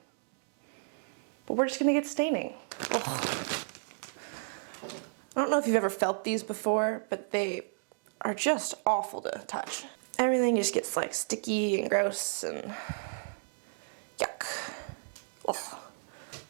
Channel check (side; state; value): left; silent; digital silence